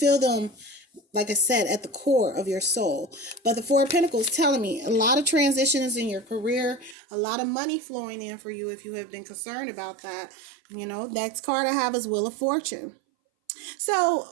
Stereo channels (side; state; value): left; drops out; at 7.0 s